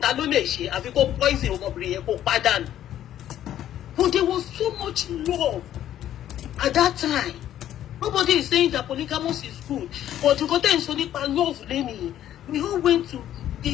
ló lè ṣe àfi kó poison ọmọbìnrin yẹn kó pàdánù. But there was so much love at that time. Nobody is saying that polygamous is good. But you got to say love, Lenny. We all went to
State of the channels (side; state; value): right; quieter; 11.6 dB